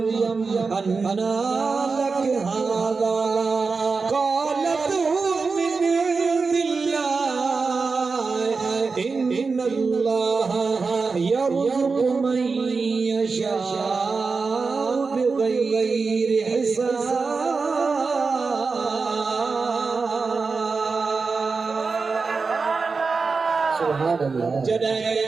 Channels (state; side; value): quieter; left; 4.5 dB